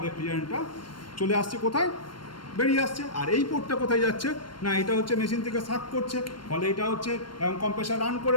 রেফ্রিজারেন্টটা চলে আসছে, কোথায় বেরিয়ে আসছে। আর এই পোর্টটা কোথায় যাচ্ছে না, এটা হচ্ছে মেশিন থেকে সাক করছে, ফলে এটা হচ্ছে এবং কম্প্রেসার রান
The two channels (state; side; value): late; right; 0.72 ms